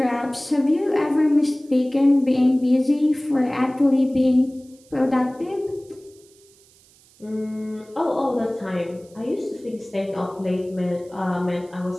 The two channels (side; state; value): right; noise; hiss, 29 dB below the sound